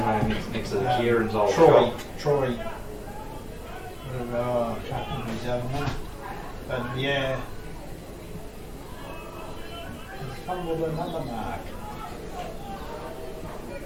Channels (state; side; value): identical; both; correlation 1.00